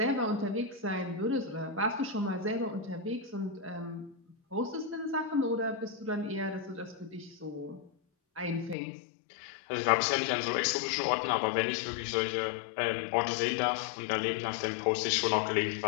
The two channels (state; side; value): drops out; right; at 8.8 s